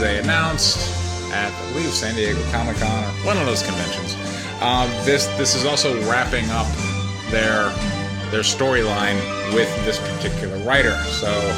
announced at, I believe, San Diego Comic Con or one of those conventions, this is also wrapping up their storyline with this particular writer. So,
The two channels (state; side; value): identical; both; correlation 1.00